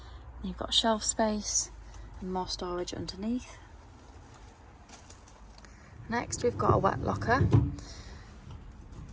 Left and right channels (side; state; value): both; identical; correlation 1.00